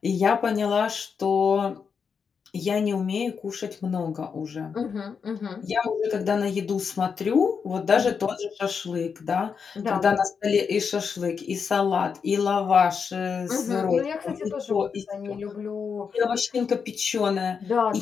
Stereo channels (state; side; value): quieter; right; 6.1 dB